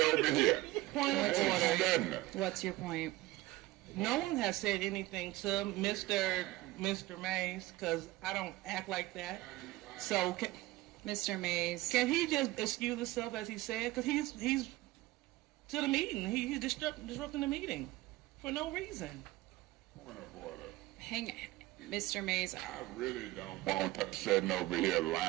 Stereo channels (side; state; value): left; quieter; 18.3 dB